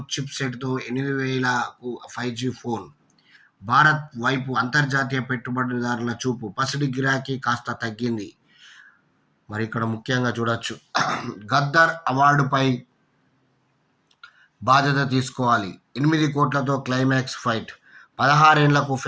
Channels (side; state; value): both; identical; correlation 1.00